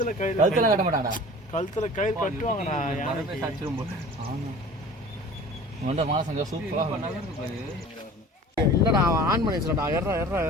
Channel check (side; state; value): both; normal; correlation 0.43